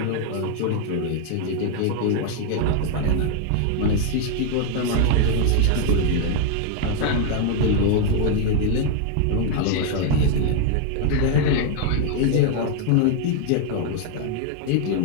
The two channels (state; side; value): different; both; correlation 0.00